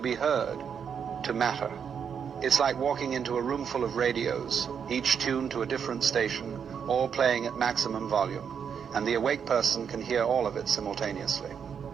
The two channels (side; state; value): left; quieter; 7.3 dB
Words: heard, to matter. It's like walking into a room full of radios, each tuned to a different station, all playing at maximum volume, and the awake person can hear all of it simultaneously.